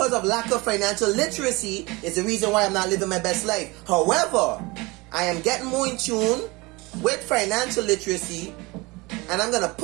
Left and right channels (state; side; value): quieter; left; 24.1 dB